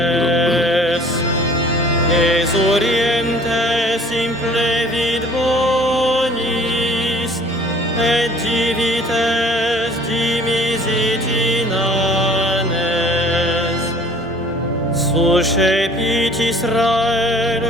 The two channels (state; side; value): normal; both; correlation 0.52